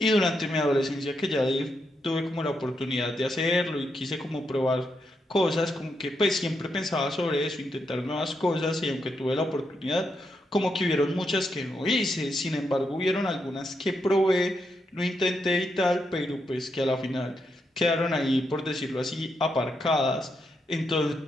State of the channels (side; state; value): both; normal; correlation 0.82